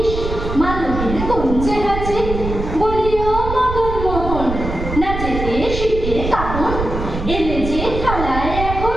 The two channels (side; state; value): right; noise; rumble, 5 dB below the sound